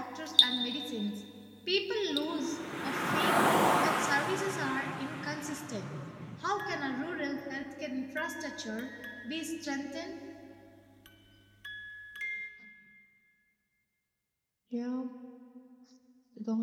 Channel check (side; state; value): both; identical; correlation 1.00